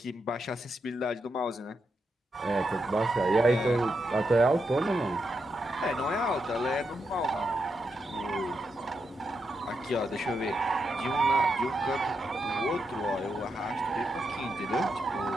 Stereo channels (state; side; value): normal; both; correlation 0.84